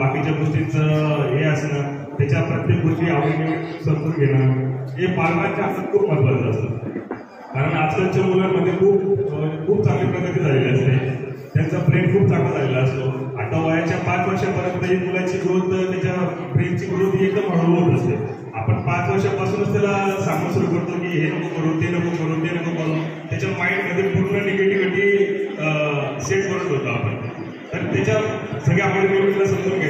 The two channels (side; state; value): both; identical; correlation 1.00